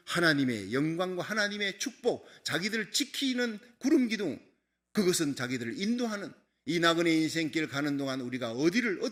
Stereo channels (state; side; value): identical; both; correlation 1.00